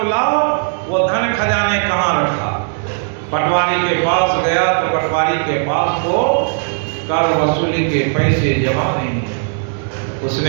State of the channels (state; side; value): silent; left; digital silence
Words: लाओ, वो धन खजाने कहाँ रखा। पटवारी के पास गया तो पटवारी के पास तो कर वसूली के पैसे जमा नहीं है।